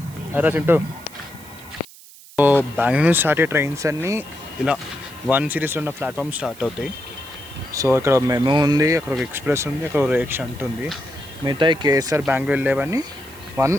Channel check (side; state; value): right; noise; hiss, 21 dB below the sound